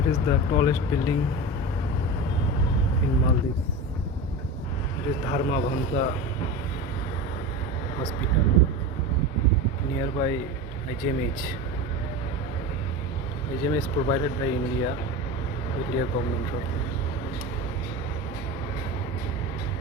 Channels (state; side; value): normal; both; correlation 0.26